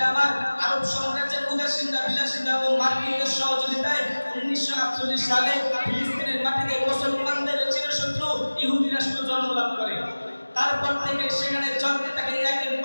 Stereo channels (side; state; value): both; inverted; correlation -1.00